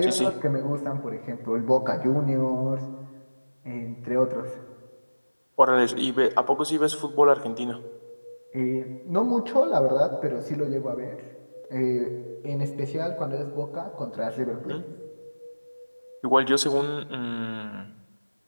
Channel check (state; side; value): inverted; both; correlation -1.00